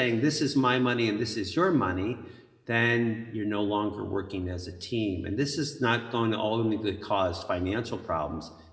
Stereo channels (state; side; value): identical; both; correlation 1.00